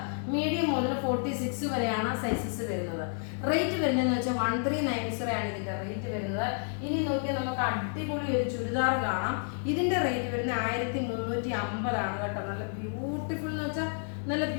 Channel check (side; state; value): right; silent; 58 dB below the other